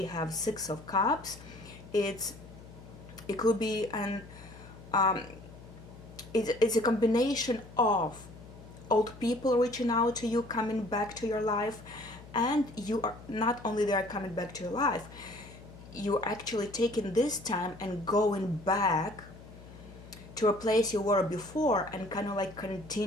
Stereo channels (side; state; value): left; noise; hum, 18 dB below the sound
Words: have Six of Cups. It could be it's a combination of old people reaching out to you, coming back to your life, and you are not only they are coming back to your life, you're actually taking this time and going back to a place you were before and kind of like